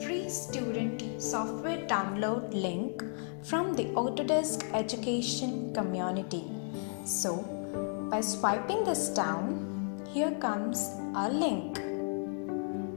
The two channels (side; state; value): right; silent; 56 dB below the other